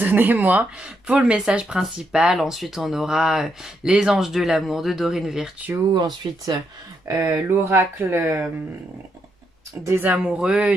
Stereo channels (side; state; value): both; normal; correlation 0.79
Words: pour le message principal. Ensuite on aura les anges de l'amour de Dorine Virtue. Ensuite l'oracle des amoureux